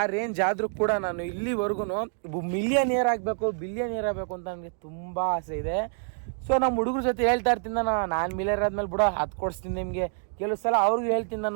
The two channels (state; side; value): silent; left; 58 dB below the other